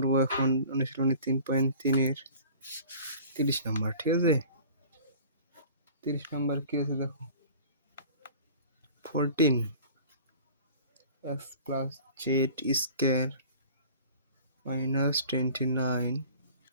এখন অনুশীলনী 3.3-এর 30 নাম্বার। ঠিক আছে, 30 নাম্বার কি আছে দেখো। 14 x plus z square minus 29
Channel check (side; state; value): both; inverted; correlation -0.45